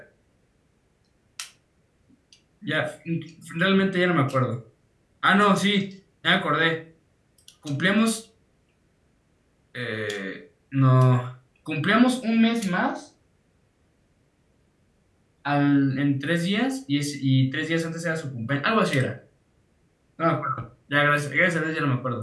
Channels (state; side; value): identical; both; correlation 1.00